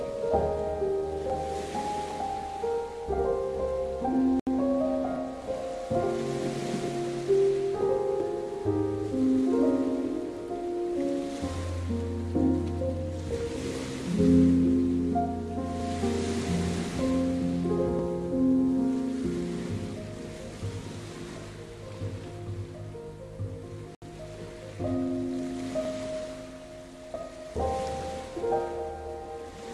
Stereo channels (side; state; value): both; identical; correlation 1.00